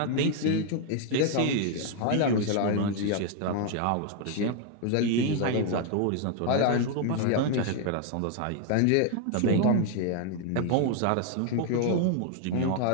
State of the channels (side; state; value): both; different; correlation 0.00